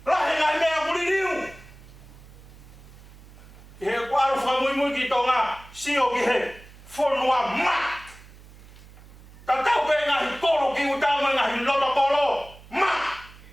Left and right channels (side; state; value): right; noise; hum, 21 dB below the sound